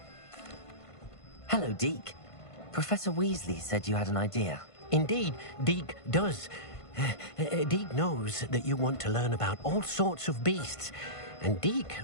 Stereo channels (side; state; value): right; late; 1.5 ms